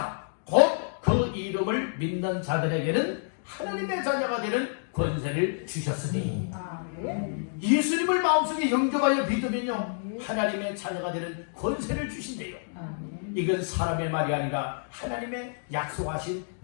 곧 그 이름을 믿는 자들에게는 하나님의 자녀가 되는 권세를 주셨으니, 예수님을 마음속에 영접하여 믿으면요 하나님의 자녀가 되는 권세를 주신대요. 이건 사람의 말이 아니라 하나님의 약속하신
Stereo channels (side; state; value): right; silent; digital silence